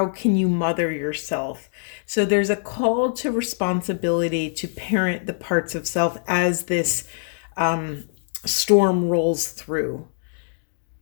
can you mother yourself? So there's a call to responsibility to parent the parts of self as this storm rolls through.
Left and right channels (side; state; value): right; silent; digital silence